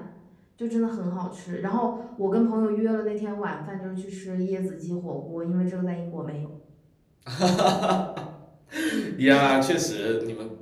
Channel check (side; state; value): both; identical; correlation 1.00